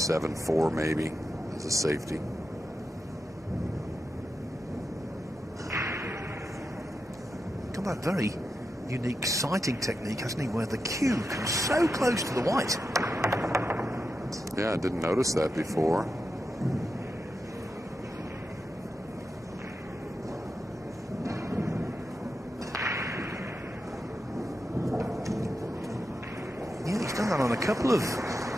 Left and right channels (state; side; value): normal; both; correlation 0.88